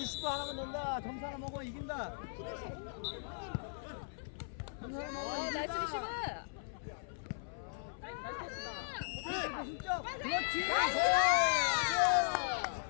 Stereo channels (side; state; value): right; silent; 53 dB below the other